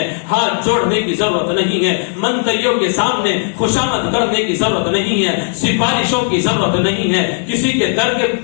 ہاتھ جوڑنے کی ضرورت نہیں ہے، منتریوں کے سامنے خوشامد کرنے کی ضرورت نہیں ہے، سفارشوں کی ضرورت نہیں ہے، کسی کے در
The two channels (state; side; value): silent; right; 66 dB below the other